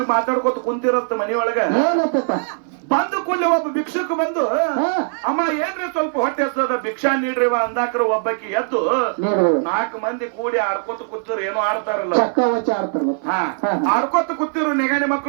ಮಾತಾಡ್ಕೊತ ಕುಂತಿರತ್ತ ಮನೆಯೊಳಗ. ಬಂದು ಕೊಳ್ಳಿ ಒಬ್ಬ ಭಿಕ್ಷುಕ ಬಂದು, ಅಮ್ಮ ಏನ್ರಿ ಸ್ವಲ್ಪ ಹೊಟ್ಟೆ ಹಸ್ತದ, ಭಿಕ್ಷಾ ನೀಡ್ರಿವ ಅಂದಾಕ್ರ ಒಬ್ಬಕಿ ಎದ್ದು 4 ಮಂದಿ ಕೂಡಿ ಆಡ್ಕೊತ ಕೂತಿರು. ಏನೋ ಆಡ್ತಾರಲ್ಲ, ಆಡ್ಕೊತ ಕೂತಿರು ನೆಗಣೆ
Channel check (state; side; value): silent; left; 59 dB below the other